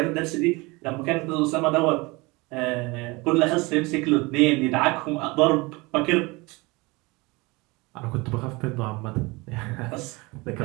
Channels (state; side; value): quieter; left; 24.6 dB